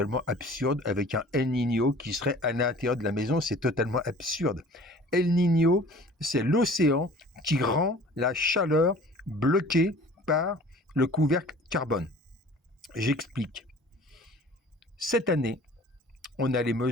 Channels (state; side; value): normal; both; correlation 0.47